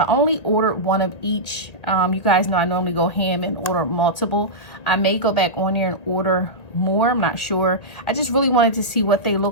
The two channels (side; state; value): right; late; 1.9 ms